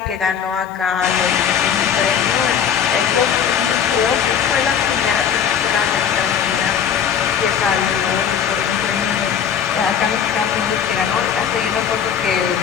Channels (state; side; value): quieter; right; 8.2 dB